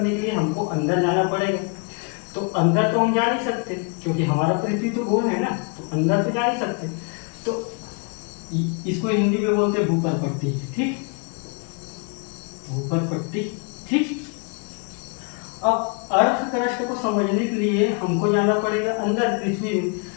के लिए हमको अंदर जाना पड़ेगा। तो अंदर तो हम जा नहीं सकते क्योंकि हमारा पृथ्वी तो गोल है ना, तो अंदर तो जा नहीं सकते। तो इसको हिंदी में बोलते हैं भूपर पट्टी। ठीक, भूपर पट्टी। ठीक, अब अर्थ क्रस्ट को समझने के लिए हमको जाना पड़ेगा अंदर पृथ्वी में।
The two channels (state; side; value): quieter; right; 35.6 dB